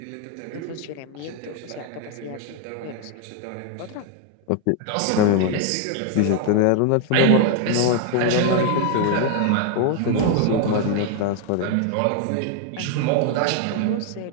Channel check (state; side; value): different; both; correlation 0.00